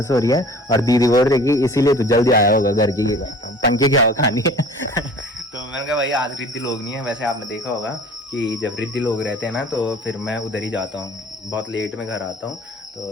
हो रही है, और दीदी बोल रही कि इसीलिए तो जल्दी आया होगा घर की, पंखे की हवा खानी है। तो मैंने कहा भाई आज रिद्धि लोग नहीं है। वैसे आपने देखा होगा कि जब रिद्धि लोग रहते हैं ना तो फिर मैं उधर ही जाता हूँ, बहुत लेट में घर आता हूँ,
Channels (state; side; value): normal; both; correlation 0.45